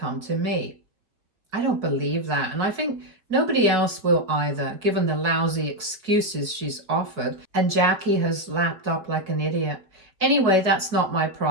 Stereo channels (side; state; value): left; late; 4.6 ms